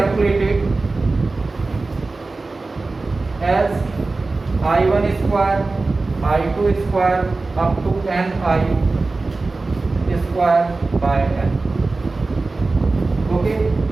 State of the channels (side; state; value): left; quieter; 3.5 dB